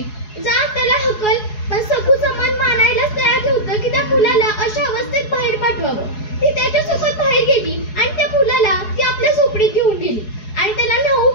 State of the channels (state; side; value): late; right; 4.7 ms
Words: जा त्याला हकल. पण सखूचं मन मानायलाच तयार नव्हतं की त्या मुलाला अशा अवस्थेत बाहेर पाठवावं. ती त्याच्यासोबत बाहेर गेली आणि त्या मुलाला ती आपल्या झोपडीत घेऊन गेली आणि त्याला न्हाऊ